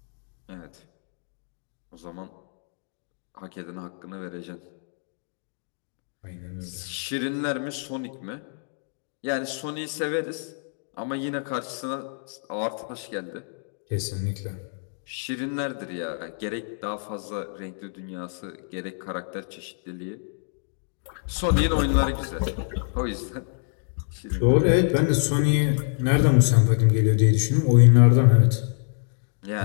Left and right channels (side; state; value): right; silent; digital silence